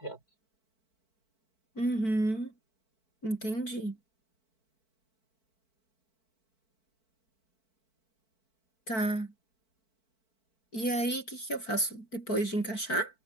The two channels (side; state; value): right; late; 4.5 ms